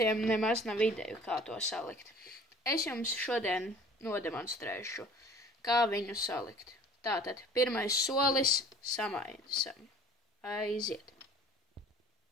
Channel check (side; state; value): both; normal; correlation 0.48